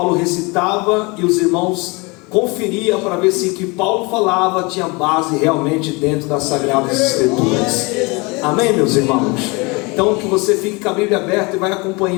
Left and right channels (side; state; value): right; quieter; 27.3 dB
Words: recitava e os irmãos conferiam para ver se o que Paulo falava tinha base realmente dentro das Sagradas Escrituras. Amém, meus irmãos? Então que você fique com a Bíblia aberta e vai